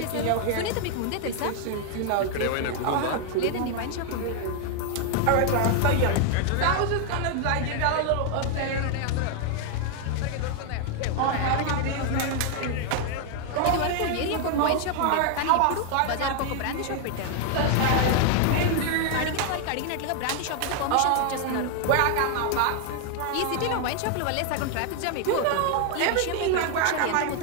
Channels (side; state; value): both; different; correlation 0.00